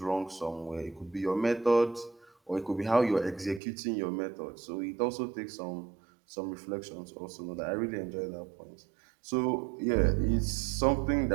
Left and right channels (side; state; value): left; drops out; at 3.6 s